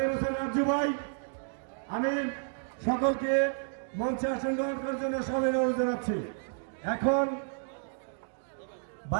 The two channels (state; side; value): silent; left; digital silence